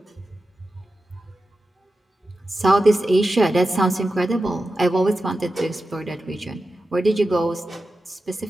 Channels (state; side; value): normal; both; correlation 0.92